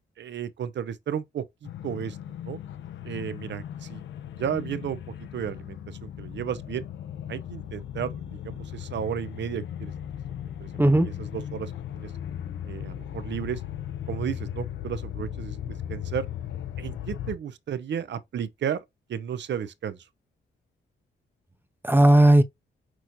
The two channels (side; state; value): both; normal; correlation 0.76